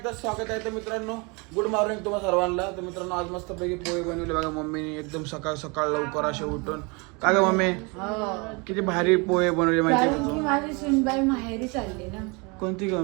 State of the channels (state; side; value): quieter; left; 29.8 dB